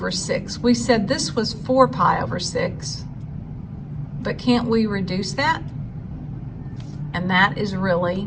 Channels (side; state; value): both; identical; correlation 1.00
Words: 6. We said this was 4 pi over 6, but can't we reduce that? And that is